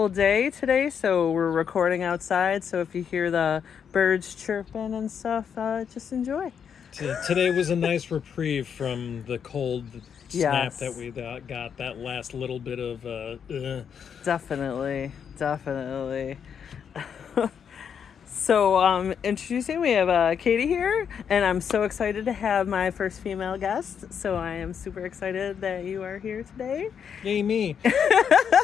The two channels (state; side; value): quieter; right; 7.5 dB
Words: day today, so we're recording outside, so if you hear the birds chirping and stuff, just enjoy. Today was a nice reprieve from the cold snap Yes. that we got, that last little bit of... Definitely. So, introducing, we have Kaydee here, and I'm so excited to have my first female guest. So I am super excited that you are here today. Yay me.